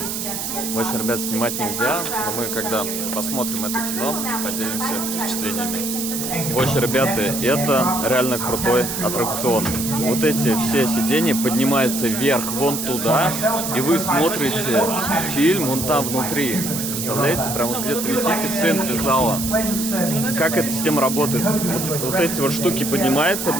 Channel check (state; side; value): noise; right; hiss, 4 dB below the sound